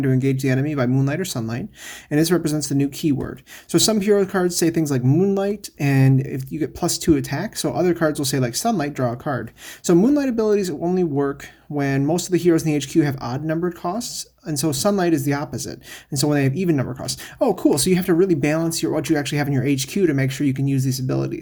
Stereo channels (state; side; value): identical; both; correlation 1.00